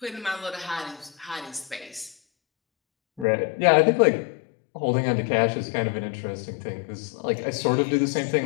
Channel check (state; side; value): drops out; right; at 3.2 s